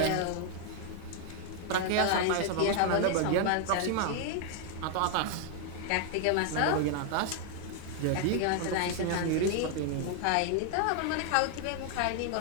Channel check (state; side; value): different; both; correlation 0.00